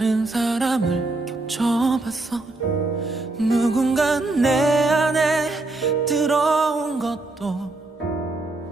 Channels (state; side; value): quieter; left; 3.1 dB